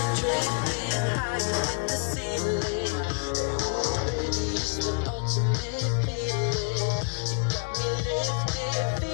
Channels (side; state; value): right; quieter; 36.2 dB